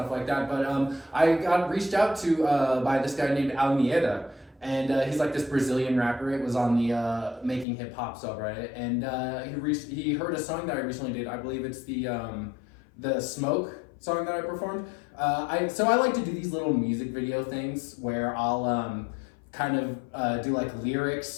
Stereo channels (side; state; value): right; drops out; at 7.7 s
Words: like that. But I got reached out to by this guy named Almeida, and he's like this Brazilian rapper. It was on the Making Hip Hop subreddit, and he heard a song that I recently did. I believe it's the Smoke song that I performed. So I like to do these little music video things where I'll kind of do like